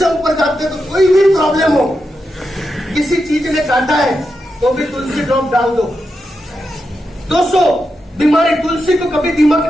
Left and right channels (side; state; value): both; normal; correlation 0.87